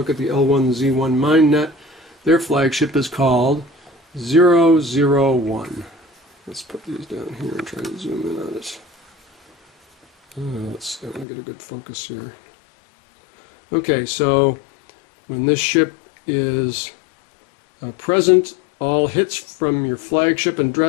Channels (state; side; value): drops out; right; at 11.2 s